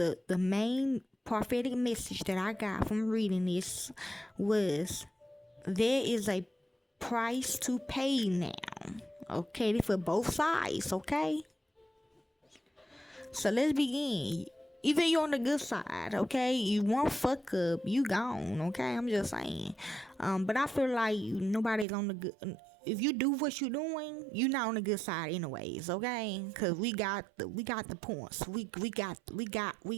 main prophetic message that I got from reading this was there is a price to pay now. Okay, for both sides, okay? So let's begin. Either you're on the good side, okay? You won't fuck up, you gone, okay? I'm just saying. But I feel like nobody's on the good. If you do what you're doing, you're not on the good side, anyways, okay? Cause we got the points. We got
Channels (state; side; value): drops out; left; at 21.9 s